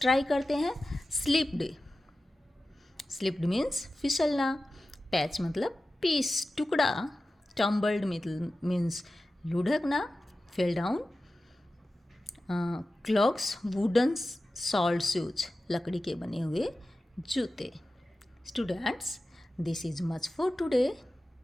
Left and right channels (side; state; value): both; normal; correlation 0.95